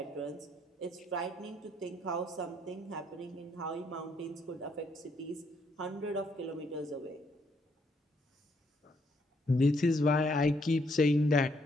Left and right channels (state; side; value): normal; both; correlation 0.72